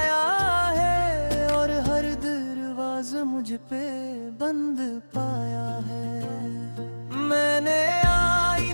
है, और हर दरवाज़ा मुझ पे बंद पाया है। मैंने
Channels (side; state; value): both; inverted; correlation -1.00